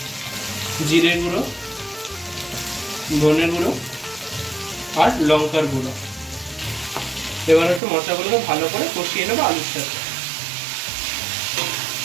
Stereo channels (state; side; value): drops out; left; at 7.8 s